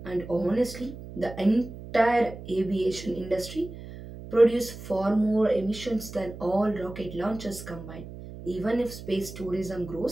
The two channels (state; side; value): noise; right; hum, 13 dB below the sound